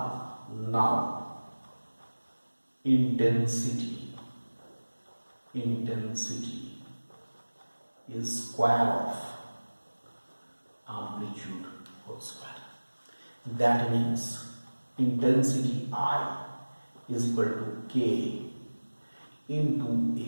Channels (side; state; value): both; inverted; correlation -1.00